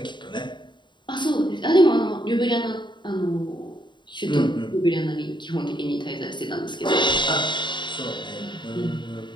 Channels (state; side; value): late; right; 0.22 ms